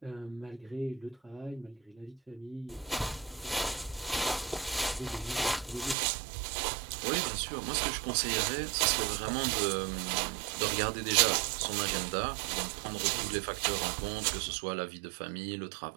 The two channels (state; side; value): drops out; left; at 6.0 s